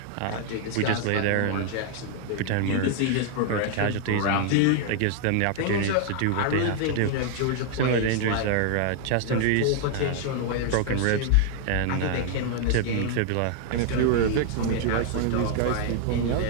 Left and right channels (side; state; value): both; different; correlation 0.00